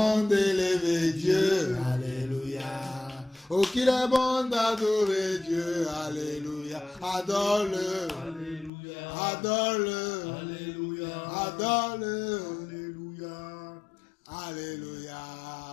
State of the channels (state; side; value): drops out; right; at 8.7 s